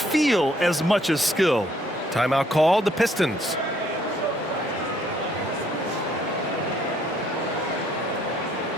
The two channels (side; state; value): both; normal; correlation 0.66